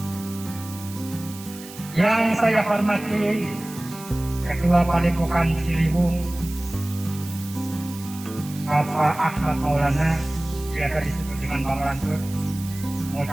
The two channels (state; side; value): noise; right; hiss, 16 dB below the sound